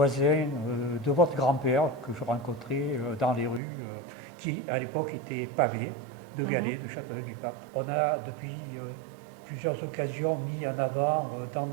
de votre grand-père que je rencontrais dans les rues qui, à l'époque, étaient pavées de galets de Châteauneuf-du-Pape. On a depuis plusieurs occasions mis en avant dans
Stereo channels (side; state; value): left; drops out; at 3.6 s